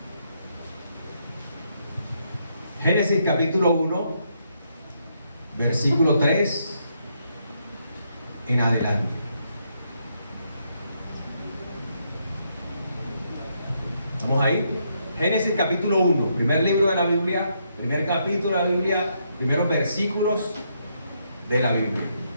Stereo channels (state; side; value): inverted; both; correlation -0.76